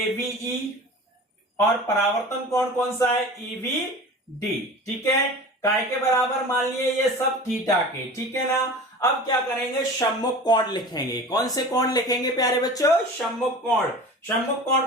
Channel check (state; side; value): normal; both; correlation 0.37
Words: और परावर्तन कोण कौन सा है? ईवीडी। ठीक है, काय के बराबर मान लिए ये सब थीटा के। ठीक है ना? अब क्या करेंगे? सम्मुख कोण लिखेंगे। कौन से कोण लिखेंगे प्यारे बच्चों? सम्मुख कोण। सम्मुख कोण